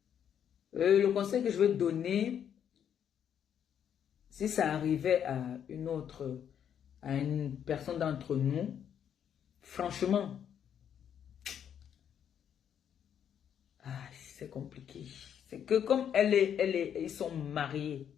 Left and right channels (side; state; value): right; quieter; 8.9 dB